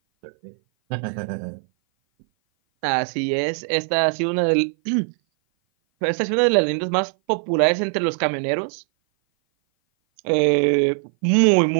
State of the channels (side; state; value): left; silent; 57 dB below the other